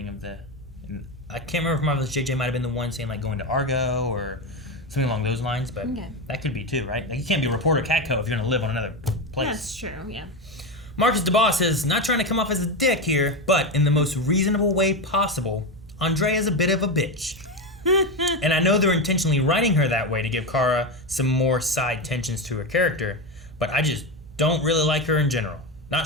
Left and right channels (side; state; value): both; normal; correlation 0.15